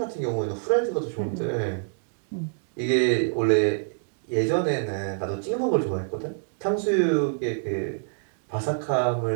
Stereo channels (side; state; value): left; silent; digital silence